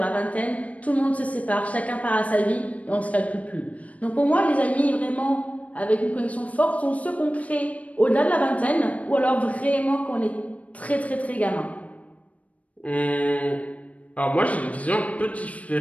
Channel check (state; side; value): late; right; 0.067 ms